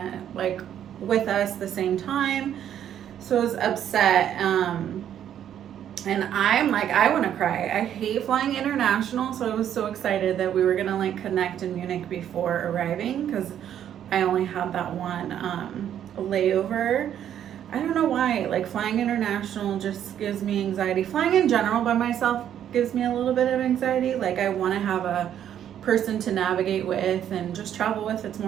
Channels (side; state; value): left; quieter; 10.1 dB